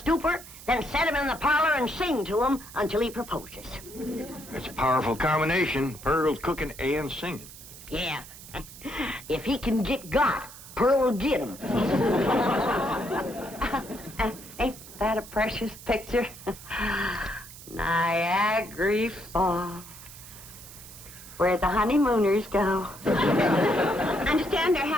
then set him in the parlor and sing to him until he proposes. That's a powerful combination. Pearl's cooking and singing. Yeah. If he can get got, Pearl will get him. Ain't that a precious picture? Niagara Falls, where the honeymooners go. Understand they're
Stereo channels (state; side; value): noise; right; hiss, 16 dB below the sound